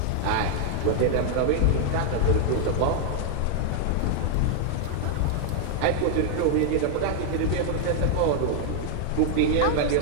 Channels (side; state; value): both; different; correlation 0.00